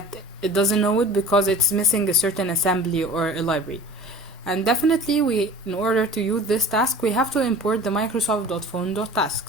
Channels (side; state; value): both; normal; correlation 0.41